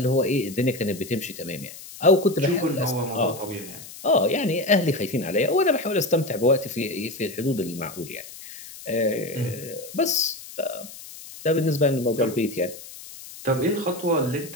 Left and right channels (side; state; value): left; noise; hiss, 15 dB below the sound